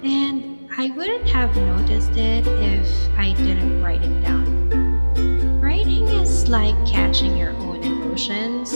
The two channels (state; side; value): inverted; both; correlation -1.00